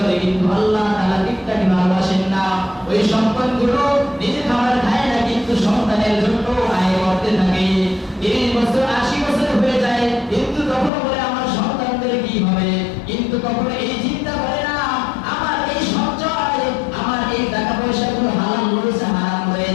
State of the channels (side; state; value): right; drops out; at 10.9 s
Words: কিন্তু আল্লাহ তাআলা গিফটারি ভালোবাসেন না। ওই সম্পদগুলো নিজে খাবার খায় না, কিন্তু সন্তানের জন্য আয় করতে থাকে। 30 বছর 80 বছর হয়ে যায়, কিন্তু কখনো বলে আমার সন্তানদের কি হবে, কিন্তু কখনো এই চিন্তা করে না আমার এই সঞ্চয়, আমার এই টাকা পয়সাগুলো হালাল রয়েছে হারাম